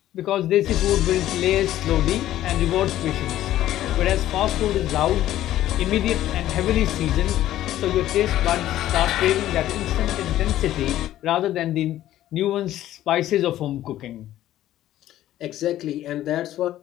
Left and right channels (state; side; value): quieter; right; 13.4 dB